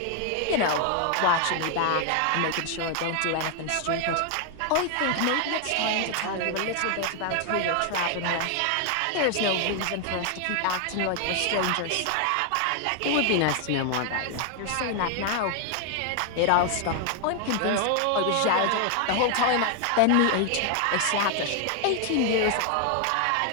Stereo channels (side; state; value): both; different; correlation 0.00